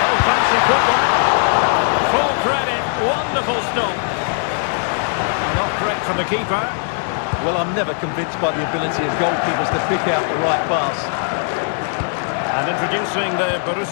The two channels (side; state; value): right; silent; 64 dB below the other